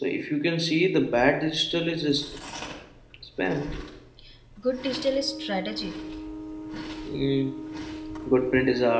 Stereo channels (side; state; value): both; identical; correlation 1.00